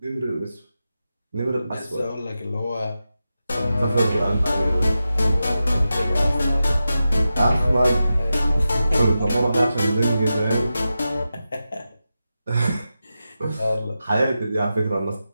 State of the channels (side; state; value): both; inverted; correlation -0.91